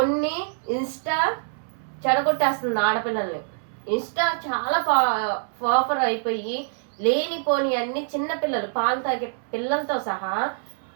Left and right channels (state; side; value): silent; left; 62 dB below the other